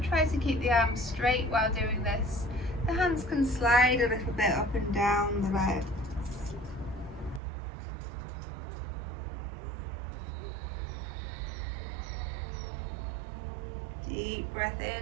try to keep the arms straight while doing this. The hands can slide a little bit up and down the legs. Deep breath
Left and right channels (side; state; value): left; drops out; at 7.4 s